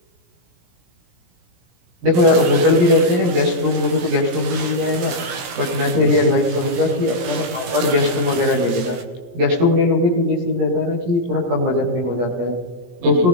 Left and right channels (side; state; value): left; late; 17 ms